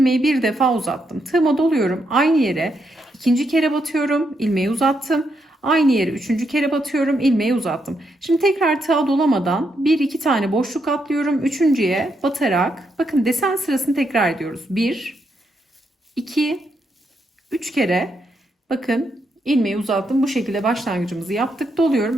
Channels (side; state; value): both; normal; correlation 0.80